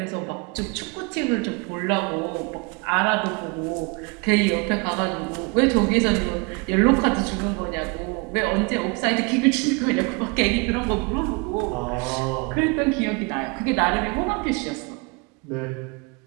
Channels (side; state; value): left; quieter; 29.9 dB